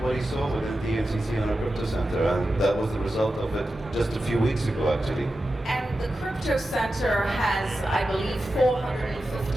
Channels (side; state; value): both; normal; correlation 0.92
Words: what he saw within DMCC and our crypto center, and that was the result of it just a few weeks ago, actually. And the Crypto Center has, I believe,